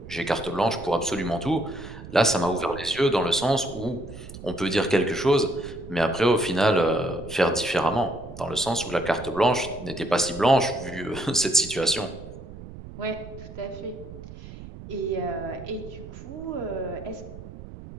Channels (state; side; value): noise; right; rumble, 14 dB below the sound